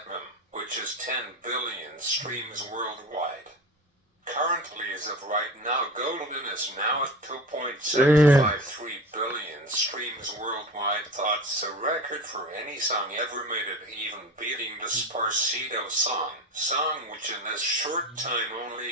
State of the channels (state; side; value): normal; both; correlation 0.31